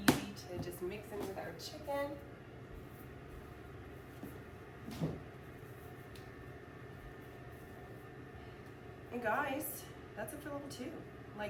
to just mix in with our chicken. And guys, that's it for level 2.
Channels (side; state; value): both; identical; correlation 1.00